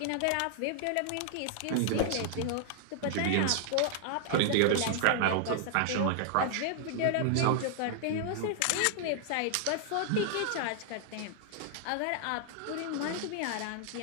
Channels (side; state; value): both; different; correlation -0.01